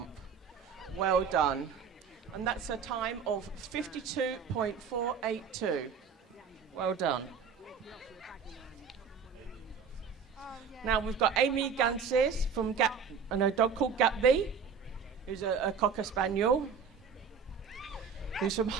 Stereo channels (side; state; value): left; quieter; 6.2 dB